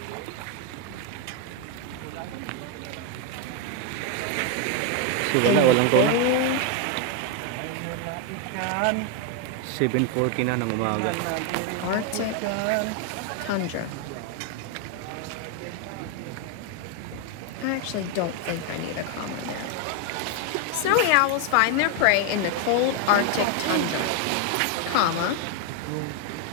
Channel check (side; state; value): both; different; correlation 0.01